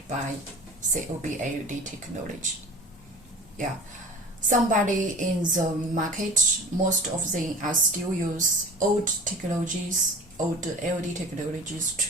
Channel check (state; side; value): normal; both; correlation 0.39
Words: by COB LED technology. Yeah, somebody in the market, most of them are still use old technologies, old LED technologies